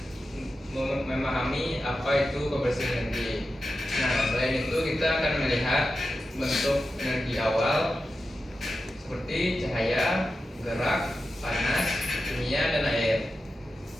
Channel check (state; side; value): normal; both; correlation 0.91